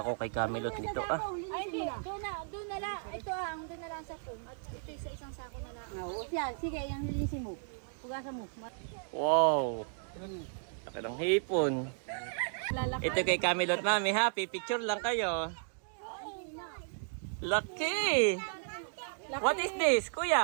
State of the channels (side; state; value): left; silent; digital silence